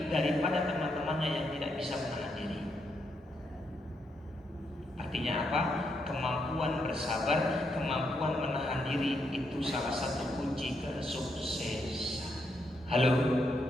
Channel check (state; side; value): normal; both; correlation 0.79